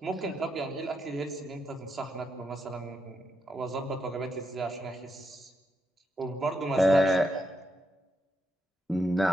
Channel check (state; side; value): normal; both; correlation 0.82